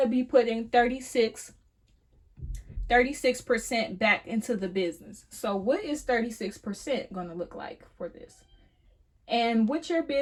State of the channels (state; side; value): identical; both; correlation 1.00